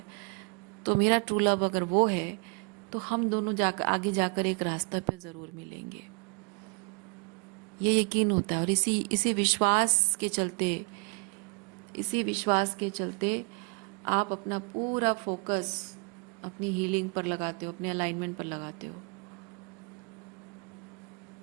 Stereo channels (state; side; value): quieter; left; 35.7 dB